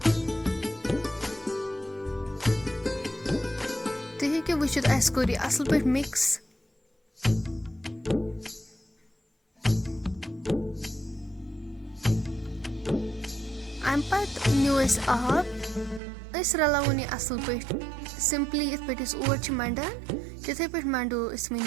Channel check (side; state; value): left; drops out; at 16.0 s